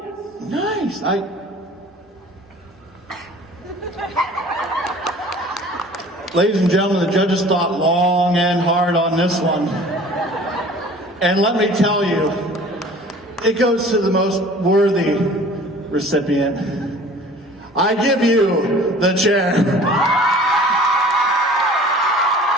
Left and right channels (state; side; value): normal; both; correlation 0.47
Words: Nice. Ladies and gentlemen, the judges thought long and hard on this one. And let me tell you, it goes to the most worthy recipient. I give you the chair.